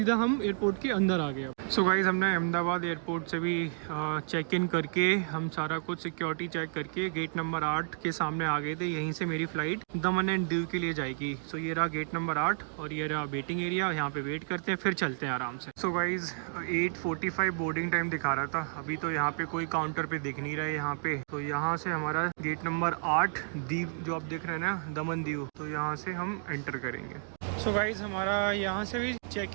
हम एयरपोर्ट के अंदर आ गए। सो गाइज, हमने अहमदाबाद एयरपोर्ट से भी चेक इन करके हम सारा कुछ सिक्योरिटी चेक करके गेट नंबर 8 के सामने आ गए थे। यहीं से मेरी फ़्लाइट दमन एंड दीव के लिए जाएगी। सो ये रहा गेट नंबर 8 और ये रहा वेटिंग एरिया। यहाँ पे वेट करते हैं, फिर चलते हैं आराम से। सो गाइज, 8:45 बोर्डिंग टाइम दिखा रहा था। अभी तो यहाँ पे कोई काउंटर पे दिख नहीं रहा है यहाँ पे। तो यहाँ से हमारा गेट नंबर 8 दीव जो आप देख रहे हैं ना, दमन दीव, तो यहाँ से हम एंटर करेंगे। सो गाइज, हमारा यहाँ से भी चेक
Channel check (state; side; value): silent; left; digital silence